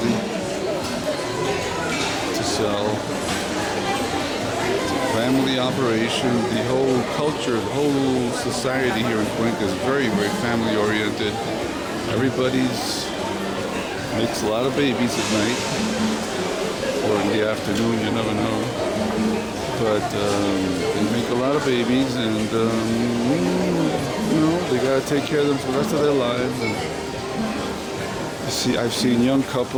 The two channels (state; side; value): identical; both; correlation 1.00